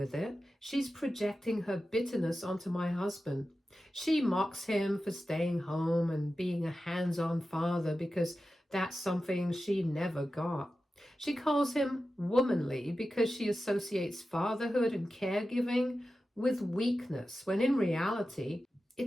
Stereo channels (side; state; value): both; normal; correlation 0.93